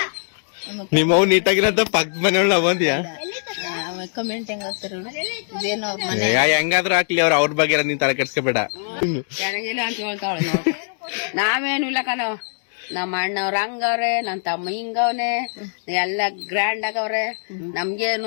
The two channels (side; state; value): right; silent; 64 dB below the other